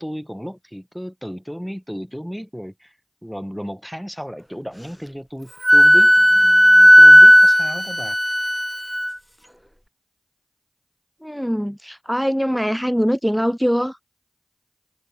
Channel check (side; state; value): both; identical; correlation 1.00